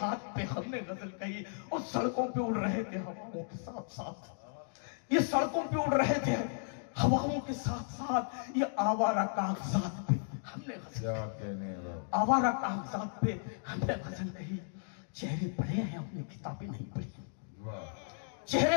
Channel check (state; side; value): silent; right; digital silence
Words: पे हमने गजल कही। और सड़कों पे उड़ रहे थे हवाओं के साथ साथ, ये सड़कों पे उड़ रहे थे हवाओं के साथ साथ, ये आवारा कागजात पे हमने गजल, क्या कहने, आवारा कागजात पे हमने गजल कही। चेहरे पढ़े हैं अपनी किताबें नहीं पढ़ी,